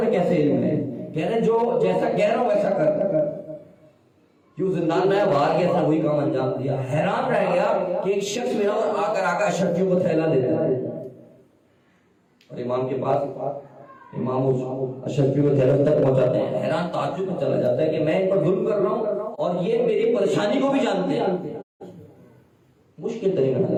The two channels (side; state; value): both; identical; correlation 1.00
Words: میں کیسے علم ہے؟ کہہ رہے جو جیسا کہہ رہا ہوں ویسا کر. کیوں زندان میں باہر گیا تھا، وہی کام انجام دیا. حیران رہ گیا کہ ایک شخص میرا اور آ کر اشرفیوں کو تھیلا دیتا ہے، اور امام کے پاس امام اشرفیوں کو تھیلا تک پہنچاتے ہیں. حیران تعجب میں چلا جاتا ہے کہ میں ان پر ظلم کر رہا ہوں اور یہ میری پریشانی کو بھی جانتے ہیں. مشکل ترین